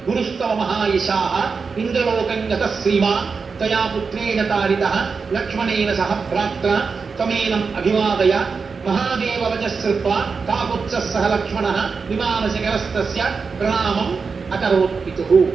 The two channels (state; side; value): quieter; left; 5.0 dB